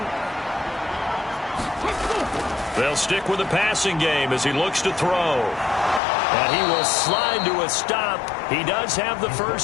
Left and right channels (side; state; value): right; drops out; at 6.0 s